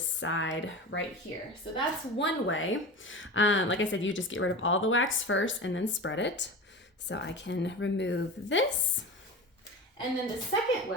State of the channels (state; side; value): normal; both; correlation 0.30